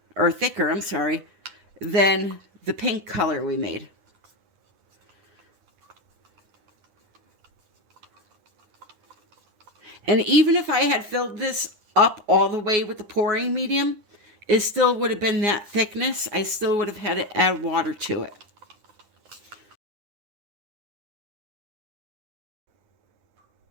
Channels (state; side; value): late; left; 9.8 ms